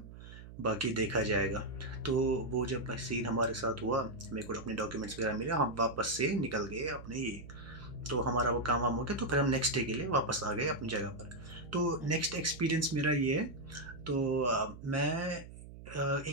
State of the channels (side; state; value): right; noise; hum, 15 dB below the sound